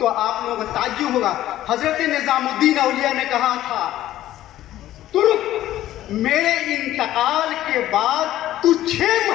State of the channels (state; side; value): quieter; right; 13.7 dB